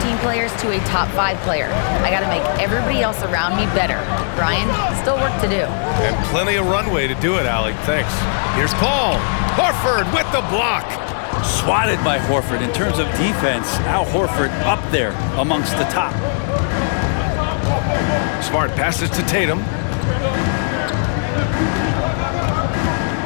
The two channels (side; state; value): right; silent; digital silence